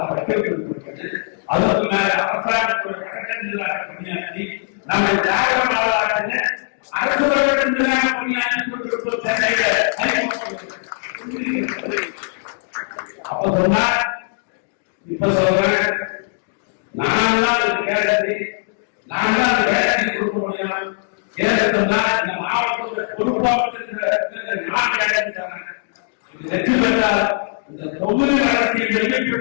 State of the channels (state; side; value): silent; right; digital silence